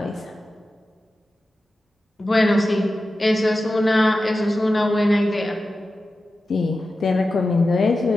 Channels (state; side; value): normal; both; correlation 0.93